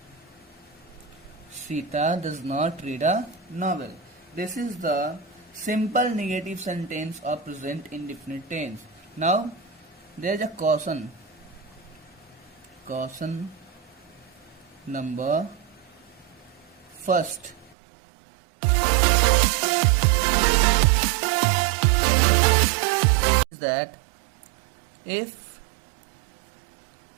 Sita does not read a novel. This is the simple negative sentence of present indefinite tense. Now there is a caution. Caution number first. Is that if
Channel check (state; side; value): drops out; left; at 17.8 s